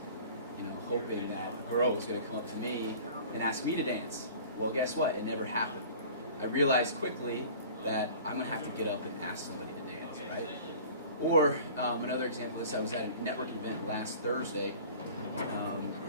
hoping that a girl was going to come up to me and ask me to dance. Well, guess what? It never happened. I realized quickly that I'm going to have to get up and ask somebody to dance, right? Or another example of this, I was at a networking event last Thursday. And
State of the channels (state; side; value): inverted; both; correlation -0.43